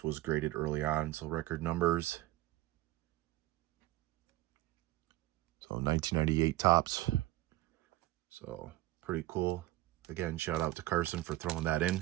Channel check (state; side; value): quieter; left; 17.2 dB